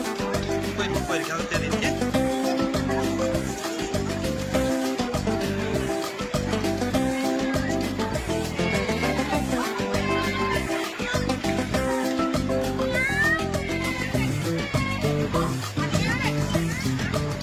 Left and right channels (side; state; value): both; identical; correlation 1.00